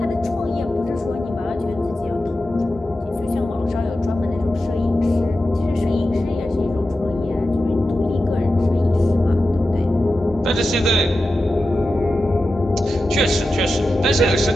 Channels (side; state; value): both; normal; correlation 0.92